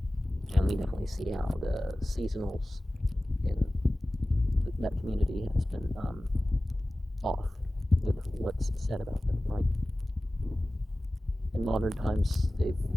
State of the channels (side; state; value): both; normal; correlation 0.96